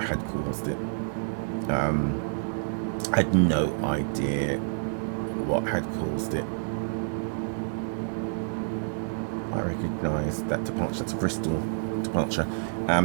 caused it. I had no idea what had caused it. I recognise that departure. That's a Bristol departure.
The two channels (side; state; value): left; silent; digital silence